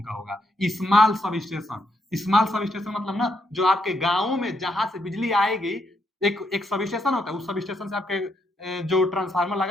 का होगा। Small sub station, small sub station मतलब ना जो आपके गांवों में जहां से बिजली आएगी, एक एक सब स्टेशन होता है, उस सब स्टेशन से आपके जो ट्रांसफार्मर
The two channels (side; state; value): both; normal; correlation 0.77